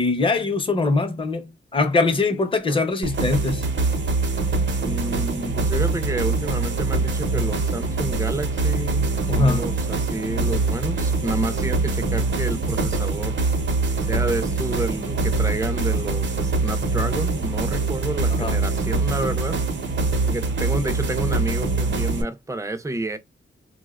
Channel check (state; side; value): normal; both; correlation 0.39